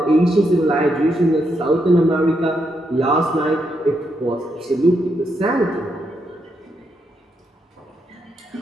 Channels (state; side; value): normal; both; correlation 0.80